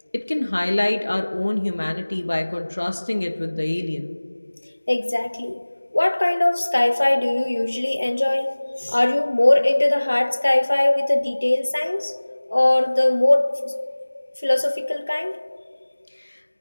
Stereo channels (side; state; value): both; inverted; correlation -1.00